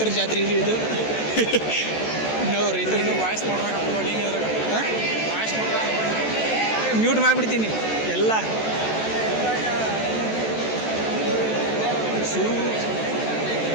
ಜಾತ್ರೆ ರೀ ಇದು. ನಾವು ರೈತರಿಗೆ ವಾಯ್ಸ್ ಮ್ಯೂಟ್ ಮಾಡಿಬಿಡ್ತೀನಿ ಎಲ್ಲ.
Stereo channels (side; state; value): right; late; 14 ms